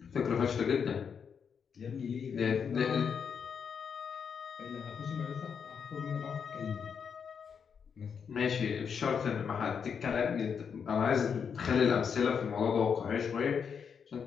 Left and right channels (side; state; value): right; quieter; 6.8 dB